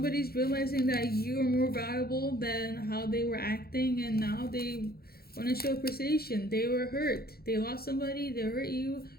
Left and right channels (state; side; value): late; right; 0.45 ms